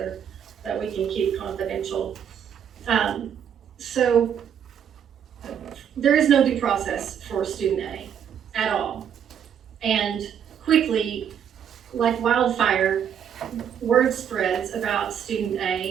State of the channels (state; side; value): quieter; left; 8.6 dB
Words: we can keep confidential. So there is no due process for student A at all. And quickly, like wildfire, word spreads about student